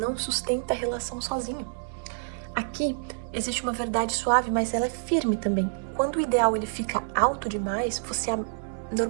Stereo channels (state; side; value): silent; left; 59 dB below the other